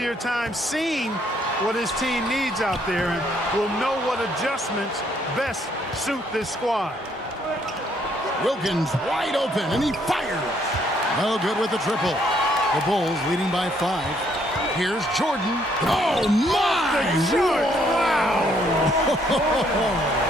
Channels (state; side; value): normal; both; correlation 0.68